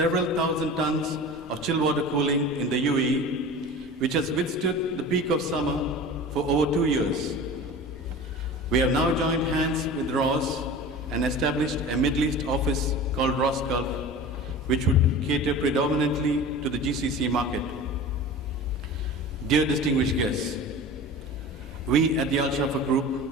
thousand tons of chill water cooling in the UAE, which has withstood the peak of summer for over 2 years. We have now joined hands with Rhoss and established a Middle East office called Rhoss Gulf, which would cater predominantly to the GCC market. Dear distinguished guests, we at the Al Shafa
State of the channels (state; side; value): normal; both; correlation 0.36